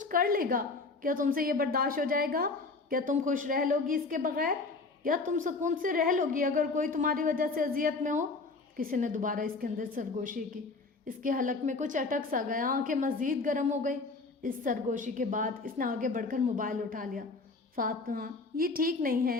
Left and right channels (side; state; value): right; quieter; 3.8 dB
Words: کر لے گا۔ کیا تم سے یہ برداشت ہو جائے گا؟ کیا تم خوش رہ لو گی اس کے بغیر؟ یا تم سکون سے رہ لو گی اگر کوئی تمہاری وجہ سے اذیت میں ہو؟ کسی نے دوبارہ اس کے اندر سرگوشی کی۔ اس کے حلق میں کچھ اٹک سا گیا، آنکھیں مزید گرم ہو گئی۔ اس سرگوشی کے بعد اس نے آگے بڑھ کر موبائل اٹھا لیا۔ فاطمہ، یہ ٹھیک نہیں ہے،